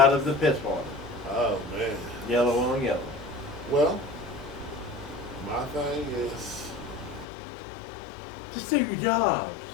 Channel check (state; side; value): drops out; right; at 7.2 s